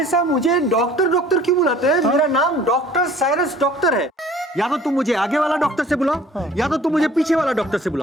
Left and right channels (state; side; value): normal; both; correlation 0.51